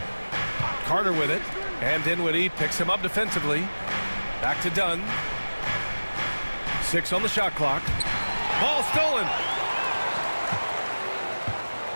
Carter with it. And Dinwiddie picks him up defensively. Back to Dunn. 6 on the shot clock. Ball stolen.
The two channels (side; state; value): both; inverted; correlation -1.00